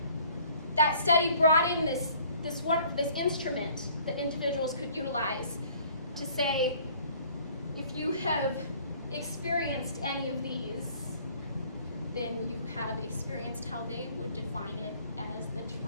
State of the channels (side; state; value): both; inverted; correlation -0.56